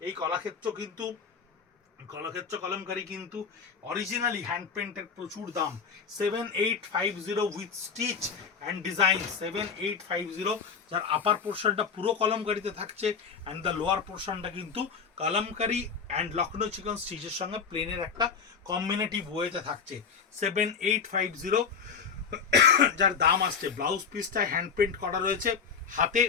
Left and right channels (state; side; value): quieter; right; 6.1 dB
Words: এই কলাক্ষেত্র কলমকারি কিন্তু অরিজিনালি হ্যান্ড পেন্টের প্রচুর দাম। 7850 উইথ স্টিচ অ্যান্ড ডিজাইন, 7850, যার আপার পোর্শনটা পুরো কলমকারিতে থাকছে, অ্যান্ড দ্য লোয়ার পোর্শনটা কিন্তু কলমকারি অ্যান্ড লখনৌ চিকন স্টিচের সঙ্গে প্লেনের একটা কম্বিনেটিভ ওয়েতে থাকছে। 7850, যার দাম আসছে। ব্লাউজ পিসটা হ্যান্ড পেন্ট করা রয়েছে হাতে